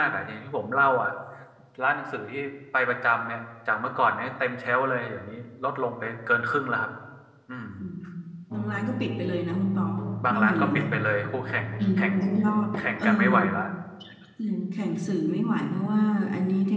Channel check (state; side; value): identical; both; correlation 1.00